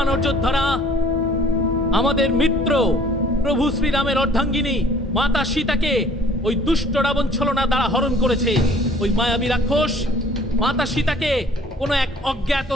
যোদ্ধারা, আমাদের মিত্র প্রভু শ্রীরামের অর্ধাঙ্গিনী মাতা সীতাকে ওই দুষ্ট রাবণ ছলনা দ্বারা হরণ করেছে। ওই মায়াবী রাক্ষস মাতা সীতাকে কোনো এক অজ্ঞাত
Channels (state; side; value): normal; both; correlation 0.54